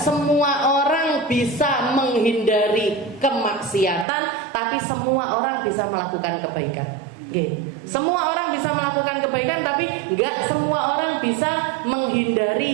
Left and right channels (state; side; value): drops out; left; at 4.0 s